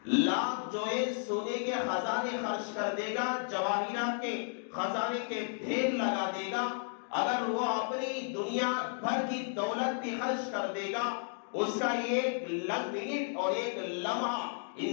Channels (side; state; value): right; silent; 56 dB below the other